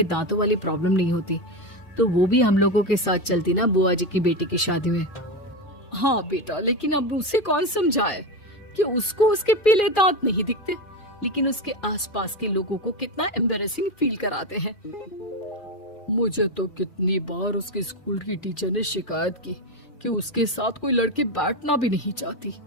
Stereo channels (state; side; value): late; right; 2.4 ms